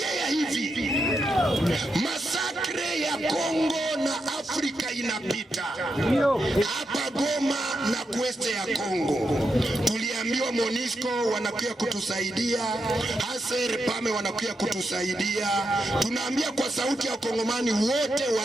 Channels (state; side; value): normal; both; correlation 0.85